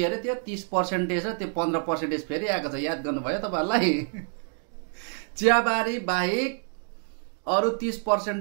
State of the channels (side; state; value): left; silent; 56 dB below the other